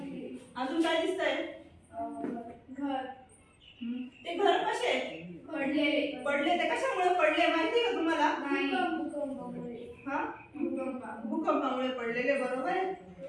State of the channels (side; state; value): both; identical; correlation 1.00